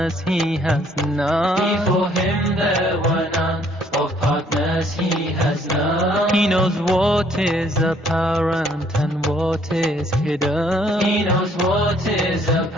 He has none. Before Him there were none, of partners He has none. He knows what is apparent and what is hidden. He knows what is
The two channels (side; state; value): both; normal; correlation 0.63